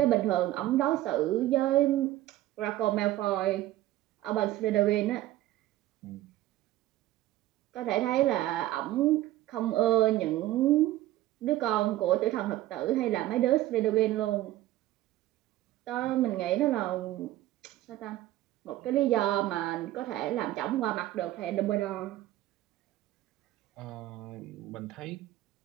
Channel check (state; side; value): quieter; left; 15.1 dB